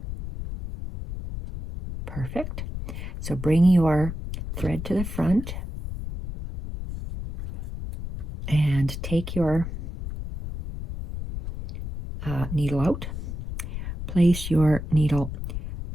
Perfect. So bring your thread to the front and take your needle out. Place your needle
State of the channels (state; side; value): noise; left; rumble, 7 dB below the sound